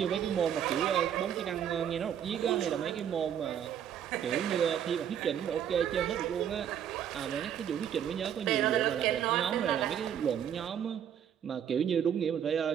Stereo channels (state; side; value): quieter; left; 9.3 dB